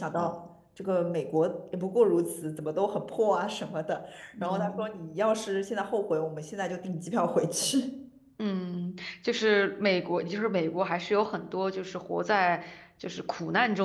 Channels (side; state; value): both; identical; correlation 1.00